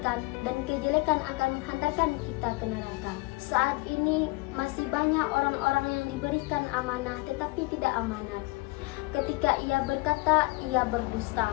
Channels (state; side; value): quieter; right; 24.9 dB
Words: dan kejelekan akan menghantarkan kita ke neraka. Saat ini masih banyak orang-orang yang diberikan amanah tetapi tidak amanat. Ketika ia berkata, ia berdusta.